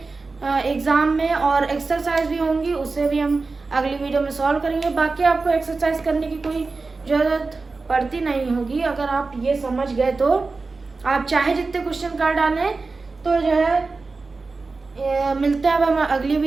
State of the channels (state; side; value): quieter; left; 3.9 dB